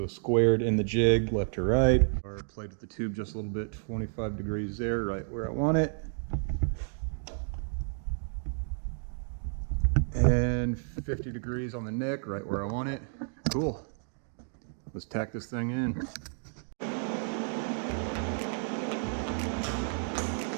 squared in the jig left to right. Or played with the tube just a little bit, 25 degrees there, right where I want it. And 50 degrees on the neck, right where I want it. Cool. Let's tack this thing in.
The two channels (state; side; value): silent; left; 57 dB below the other